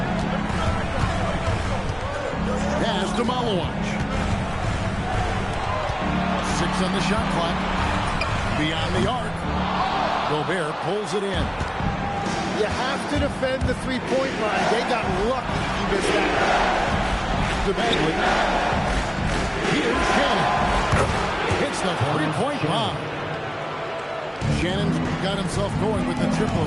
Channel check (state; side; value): identical; both; correlation 1.00